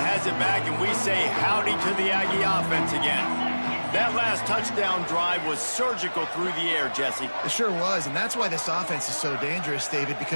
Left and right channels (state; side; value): inverted; both; correlation -1.00